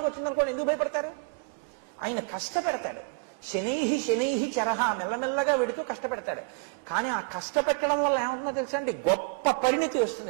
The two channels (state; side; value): quieter; left; 30.4 dB